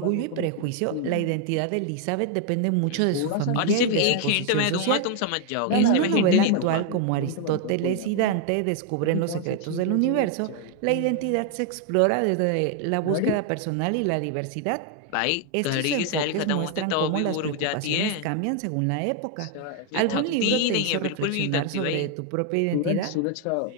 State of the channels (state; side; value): different; both; correlation 0.00